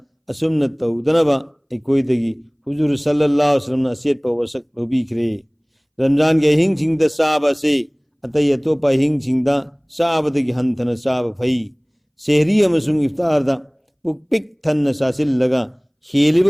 असुमना तौदनबा अखोइदगी हुजूर सल्लल्लाहु अलैहि वसल्लम असेटपा वसक लौबीखरे रमजान की अहिंगसिंगदा साबा से अतई अतोपा अहिंगसिंगदा साबदगी हंथना साबा फई सेहरी अमसुंग इफ्तारदा पुक पिक थन्ना सासिल्लगा हेलिब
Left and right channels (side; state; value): both; identical; correlation 1.00